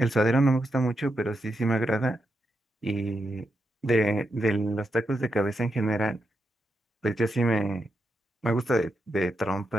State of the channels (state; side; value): normal; both; correlation 0.85